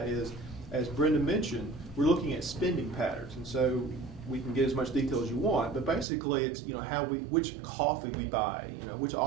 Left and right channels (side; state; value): left; drops out; at 6.1 s